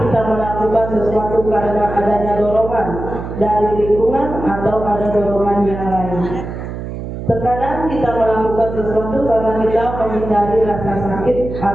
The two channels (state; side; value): noise; right; hum, 8 dB below the sound